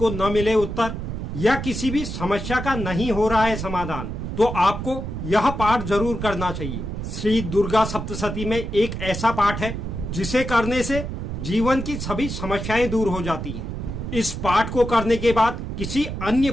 न मिले उत्तर या किसी भी समस्या का नहीं हो रहा है समाधान, तो आपको यह पाठ जरूर करना चाहिए। श्री दुर्गा सप्तशती में एक ऐसा पाठ है जिसे करने से जीवन की सभी समस्याएं दूर हो जाती हैं। इस पाठ को करने के बाद किसी अन्य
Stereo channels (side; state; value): right; noise; rumble, 5 dB below the sound